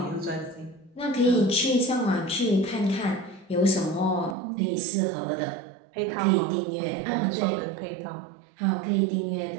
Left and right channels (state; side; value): drops out; left; at 4.4 s